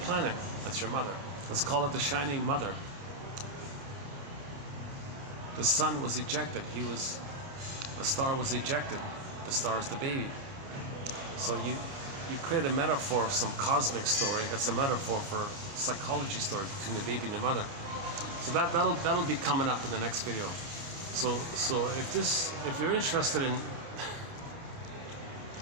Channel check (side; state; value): left; late; 29 ms